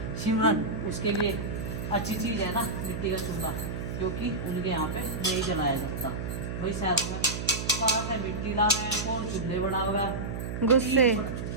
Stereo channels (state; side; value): noise; right; hum, 5 dB below the sound